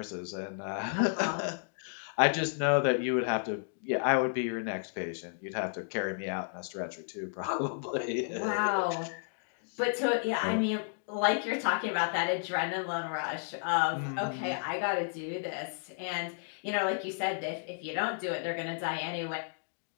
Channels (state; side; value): silent; right; digital silence